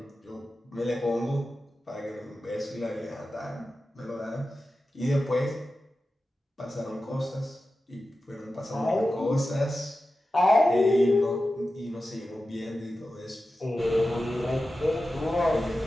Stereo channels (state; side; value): normal; both; correlation 0.93